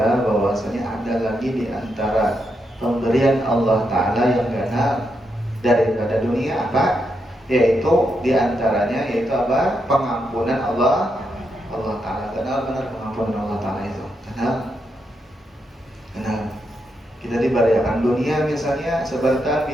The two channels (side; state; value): both; normal; correlation 0.82